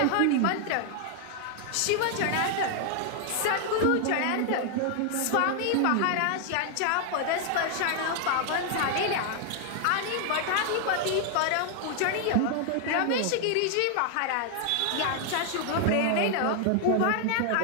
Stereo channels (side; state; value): both; different; correlation 0.00